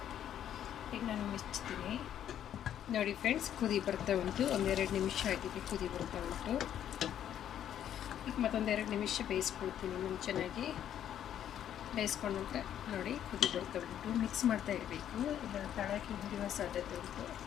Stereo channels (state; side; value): quieter; right; 10.3 dB